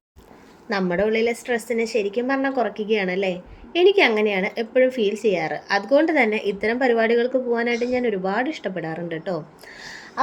നമ്മുടെ ഉള്ളിലെ സ്ട്രെസ്സിനെ ശരിക്കും പറഞ്ഞാൽ കുറയ്ക്കുകയാണല്ലേ. എനിക്ക് അങ്ങനെയാണ് എപ്പോഴും ഫീൽ ചെയ്യാറ്. അതുകൊണ്ട് തന്നെ ഇത്തരം പരിപാടികൾക്ക് പോകാനായിട്ട് ഞാൻ ഒരുപാട് ഇഷ്ടപ്പെടാറുണ്ട് കേട്ടോ.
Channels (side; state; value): both; identical; correlation 1.00